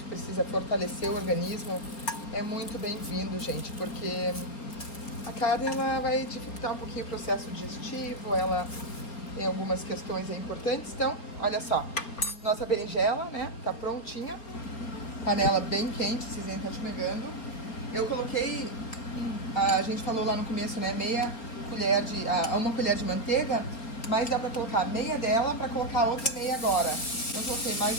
precisa fortalecer o organismo é muito bem-vindo, gente, porque a carne ela vai dificultar um pouquinho o processo digestivo, ela tem algumas questões aí importantes. Então, olha só, nossa berinjela, né, tá prontinha, panela bem quente, vocês nem estão esmegando. Eu coloquei, a gente falou lá no começo, né, uma colher de manteiga, mas dá pra colocar meia dela pra colocar outra meia agora. Eu coloquei mais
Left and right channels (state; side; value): late; right; 4.3 ms